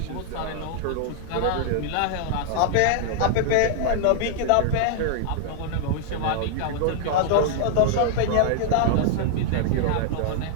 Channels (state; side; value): different; both; correlation -0.01